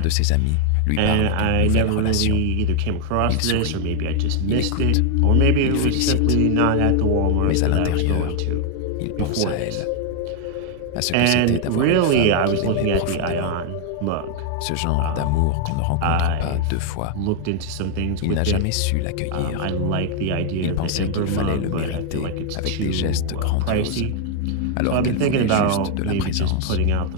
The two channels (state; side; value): different; both; correlation 0.00